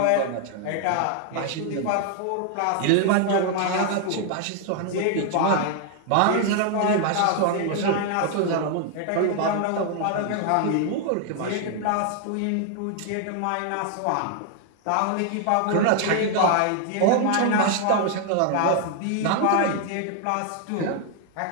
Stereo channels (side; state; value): both; different; correlation 0.00